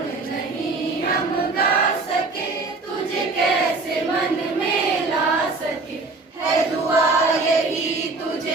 नहीं हम गा सके तुझे कैसे मन में ला सके है दुआ यही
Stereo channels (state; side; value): quieter; left; 3.6 dB